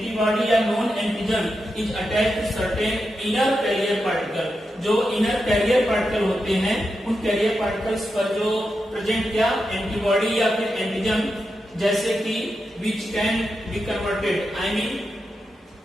या known antigen is attached to certain inner carrier particle. जो इनर कैरियर पार्टिकल होते हैं उन कैरियर पार्टिकल्स पर जो प्रेजेंट क्या एंटीबॉडी या फिर एंटीजन, जैसे कि which can be converted, I mean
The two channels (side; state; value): both; normal; correlation 0.88